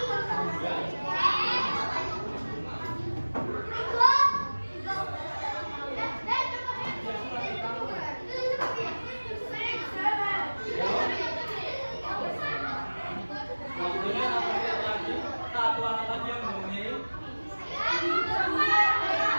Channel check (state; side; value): inverted; both; correlation -1.00